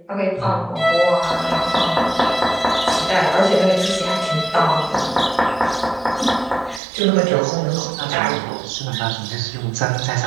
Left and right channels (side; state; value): left; drops out; at 6.8 s